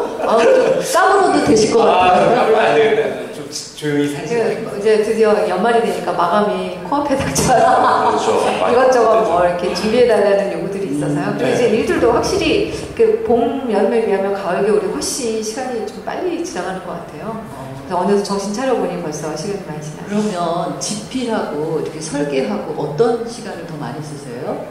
까불어도 되실 것 같아요. 까불면 안 되겠다. 좀 조용히 살자. 이제 드디어 연말이 되니까 마감이 코앞에 닥쳐요. 그렇죠. 이것저것 뭐 이렇게 준비해달라는 요구들이 있어서요. 그리고 이제 일들도 확실히 그 봄, 여름에 비하면 가을, 겨울이 훨씬 시간이 좀 빨리 지나가는 것 같아요. 그래서 어느새 정신 차려보니 벌써 시간이 많이 지나요. 그러면 집필하고 이렇게 설계하고 어떤 시간을 더 많이 쓰세요?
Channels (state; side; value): identical; both; correlation 1.00